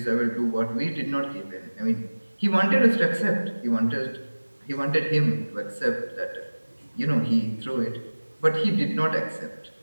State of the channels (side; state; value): both; inverted; correlation -1.00